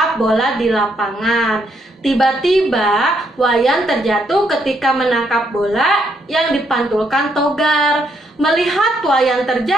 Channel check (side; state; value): both; normal; correlation 0.74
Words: bola di lapangan. Tiba-tiba Wayan terjatuh ketika menangkap bola yang dipantulkan Togar. Melihat Wayan